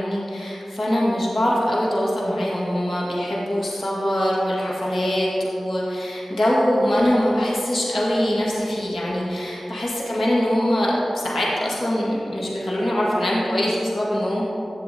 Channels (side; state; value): both; normal; correlation 0.96